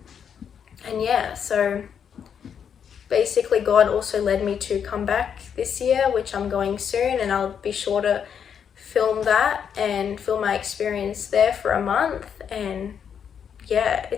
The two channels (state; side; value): quieter; right; 7.7 dB